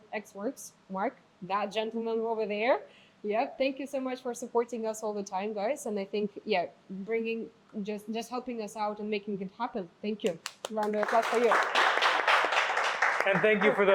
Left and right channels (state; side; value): identical; both; correlation 1.00